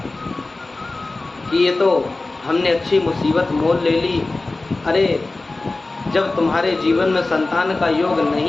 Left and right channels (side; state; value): right; quieter; 3.2 dB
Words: कि ये तो हमने अच्छी मुसीबत मोल ले ली। अरे जब तुम्हारे जीवन में संतान का योग